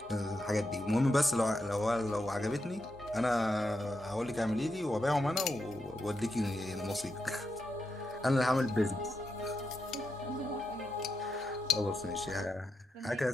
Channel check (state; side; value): normal; both; correlation 0.85